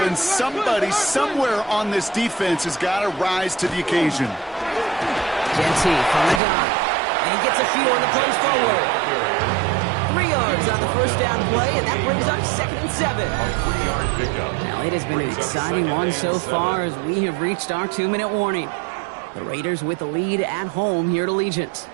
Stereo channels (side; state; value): left; drops out; at 6.4 s